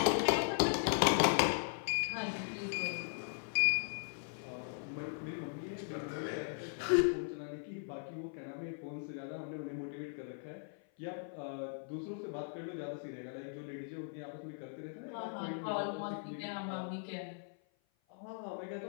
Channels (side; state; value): right; silent; 52 dB below the other